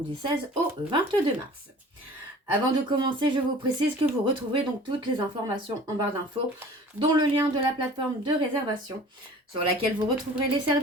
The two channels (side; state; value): both; normal; correlation 0.45